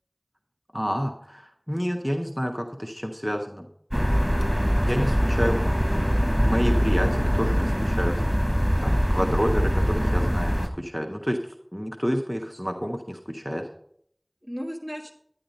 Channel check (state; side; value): identical; both; correlation 1.00